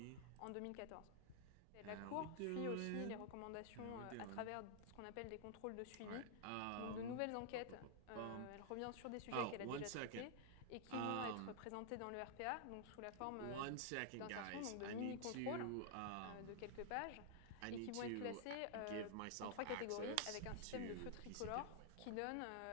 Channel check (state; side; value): different; both; correlation 0.00